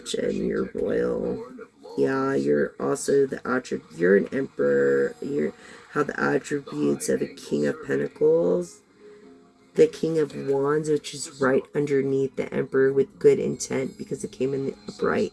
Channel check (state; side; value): identical; both; correlation 1.00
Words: you're royal. Yeah, you're also the attribute. You're an emperor. You have the attributes of a King of Pentacles. The King of Wands, which is right underneath the Emperor with good intent because it came in the upright.